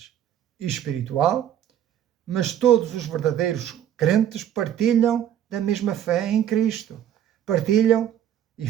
espiritual, mas todos os verdadeiros crentes partilham da mesma fé em Cristo, partilham e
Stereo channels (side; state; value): left; quieter; 10.4 dB